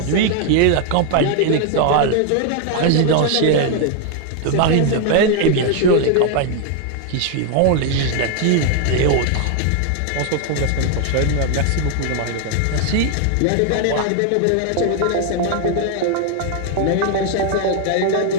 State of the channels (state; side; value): different; both; correlation 0.00